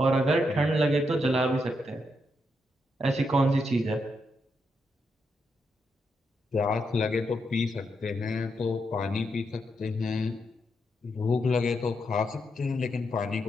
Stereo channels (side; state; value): both; normal; correlation 0.81